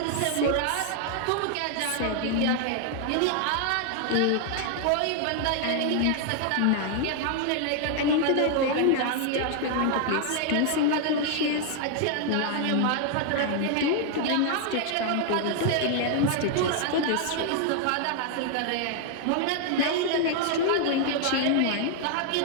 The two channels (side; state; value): both; different; correlation 0.00